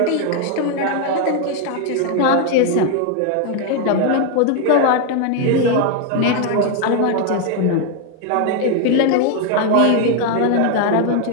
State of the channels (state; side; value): different; both; correlation 0.01